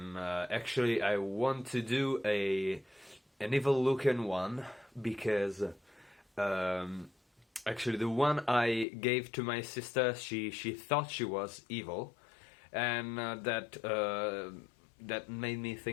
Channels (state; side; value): drops out; right; at 8.8 s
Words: actually I want to do an evil looking one because actually the one I gave to my sister, she thought she was evil, and that made me